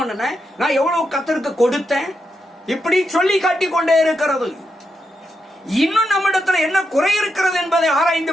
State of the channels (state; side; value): normal; both; correlation 0.84